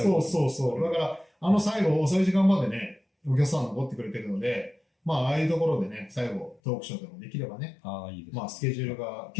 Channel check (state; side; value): drops out; right; at 6.6 s